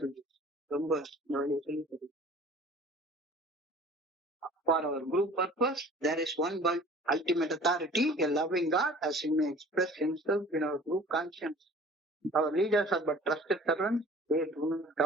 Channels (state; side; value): normal; both; correlation 0.47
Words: ரொம்ப இந்த வழியை சொல்லித் தருது. For our group purpose, there is one ultimate authority, a loving God, as he may express himself in our group conscience. Our leaders are but trusted servants, they do not